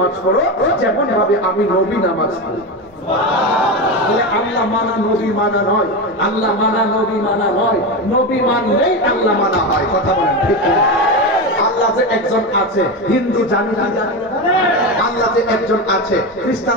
পড়ো যেমন ভাবে আমি নবী নামাজ পড়ি। বলে আল্লাহ মানা নবী মানা নয়, আল্লাহ মানা নবী মানা নয়, নবী মানলেই আল্লাহ মানা হয়। কথা বলেন ঠিক না? আল্লাহ যে একজন আছে হিন্দু জানি কি জানে না? আল্লাহ যে একজন আছে খ্রিস্টান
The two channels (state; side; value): normal; both; correlation 0.18